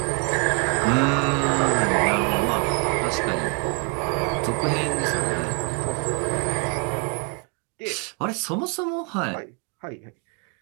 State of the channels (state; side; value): quieter; left; 34.9 dB